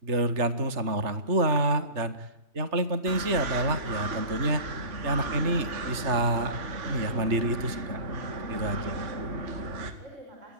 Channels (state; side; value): late; left; 3.3 ms